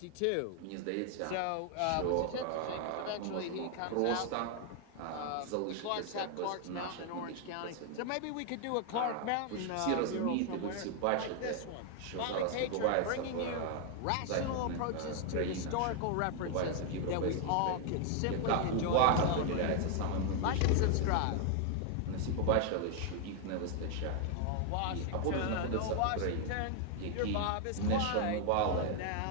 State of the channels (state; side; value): different; both; correlation 0.00